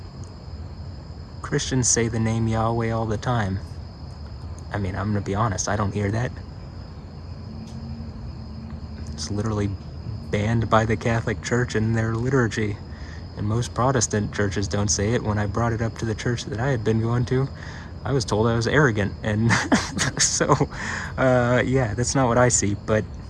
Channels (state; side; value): identical; both; correlation 1.00